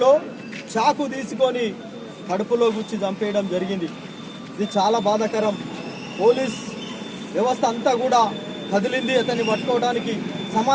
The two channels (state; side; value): identical; both; correlation 1.00